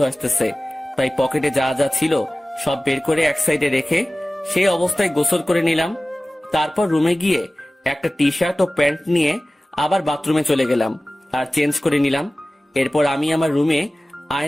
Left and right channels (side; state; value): both; normal; correlation 0.97